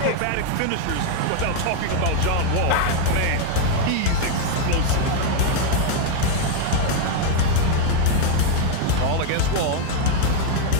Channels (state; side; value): different; both; correlation 0.00